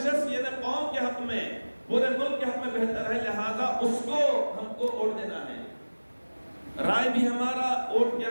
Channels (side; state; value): both; inverted; correlation -1.00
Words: شخص یہ قوم کے حق میں، پورے ملک کے حق میں بہتر ہے، لہذا اس کو ہم کو ووٹ دینا ہے۔ رائے بھی ہمارا ووٹ کیا،